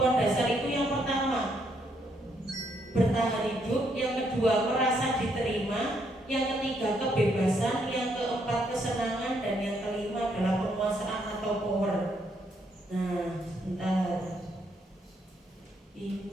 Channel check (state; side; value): normal; both; correlation 0.74